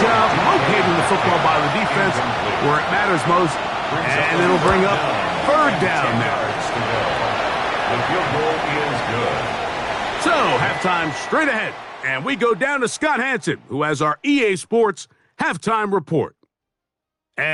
job locating the football by the defense where it matters most. And it'll bring up 3rd down now. The field goal is good. So, halftime straight ahead. And we go down to Scott Hansen, who has our EA Sports halftime report.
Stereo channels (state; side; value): identical; both; correlation 1.00